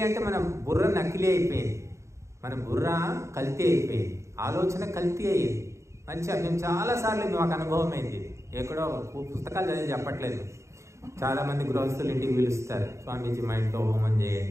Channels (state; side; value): late; left; 0.14 ms